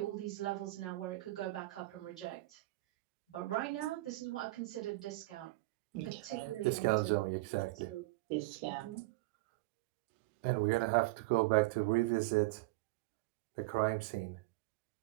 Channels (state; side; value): quieter; left; 21.2 dB